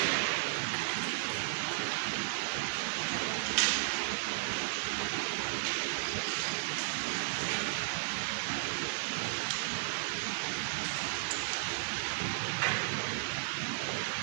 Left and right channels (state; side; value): silent; left; 55 dB below the other